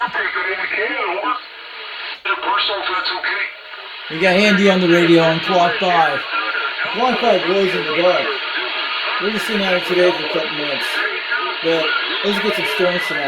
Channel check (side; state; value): both; identical; correlation 1.00